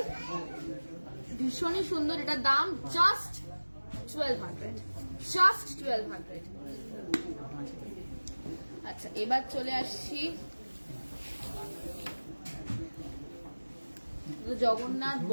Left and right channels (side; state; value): both; inverted; correlation -1.00